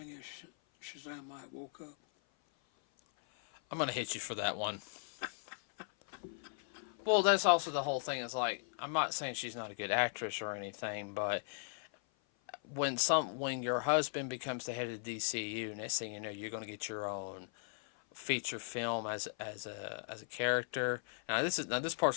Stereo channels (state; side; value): silent; right; 53 dB below the other